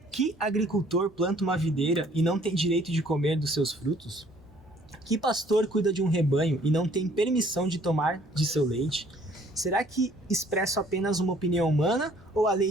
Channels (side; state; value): both; normal; correlation 0.59